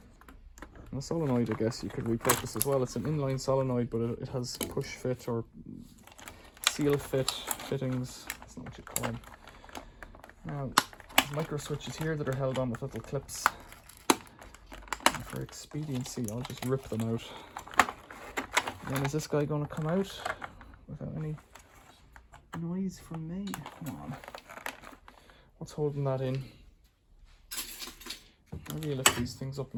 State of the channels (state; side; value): identical; both; correlation 1.00